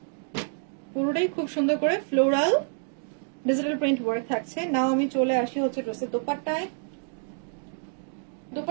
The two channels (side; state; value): left; silent; 60 dB below the other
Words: পুরোটাই খুব সুন্দর করে ফ্লোরাল ডিজিটাল প্রিন্ট ওয়ার্ক থাকছে। নাও আমি চলে আসি হচ্ছে ড্রেসের দোপাট্টায়।